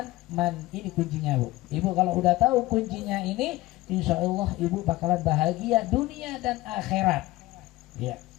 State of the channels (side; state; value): right; quieter; 18.4 dB